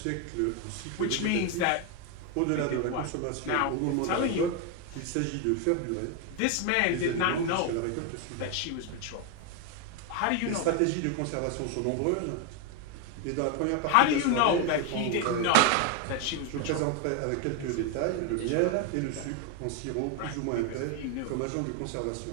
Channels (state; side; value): different; both; correlation 0.01